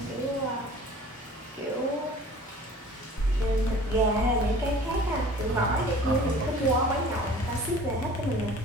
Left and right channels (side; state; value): both; normal; correlation 0.46